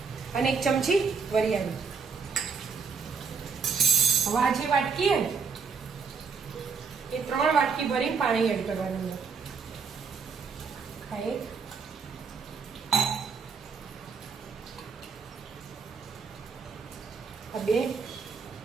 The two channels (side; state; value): left; quieter; 5.5 dB